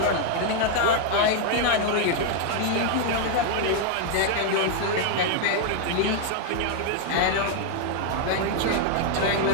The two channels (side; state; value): both; different; correlation 0.00